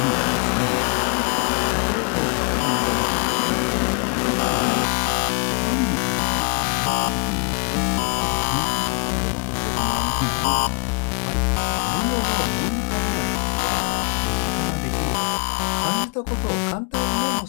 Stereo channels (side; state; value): right; quieter; 36.1 dB